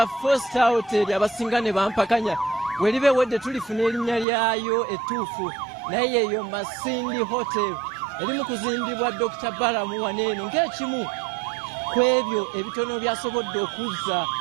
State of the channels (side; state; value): left; drops out; at 4.2 s